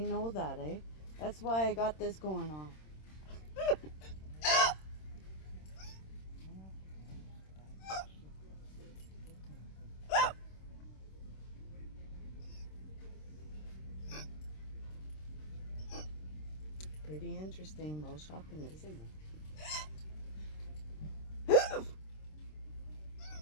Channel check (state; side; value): late; right; 26 ms